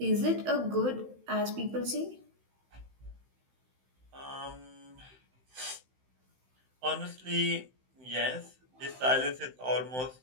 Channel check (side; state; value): left; late; 16 ms